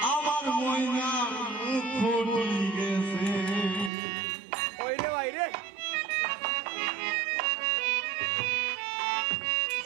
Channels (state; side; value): drops out; left; at 3.9 s